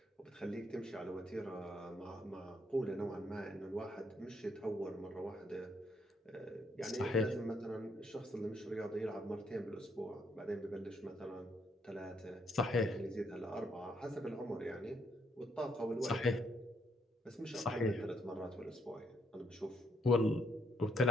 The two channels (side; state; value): both; normal; correlation 0.73